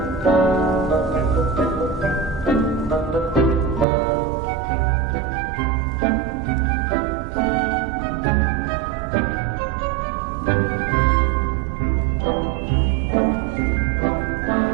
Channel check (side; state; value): left; drops out; at 3.9 s